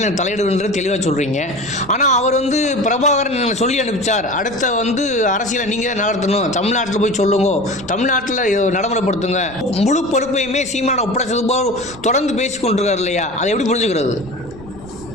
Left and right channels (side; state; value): right; noise; rumble, 19 dB below the sound